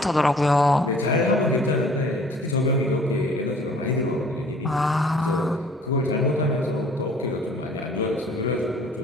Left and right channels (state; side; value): normal; both; correlation 0.54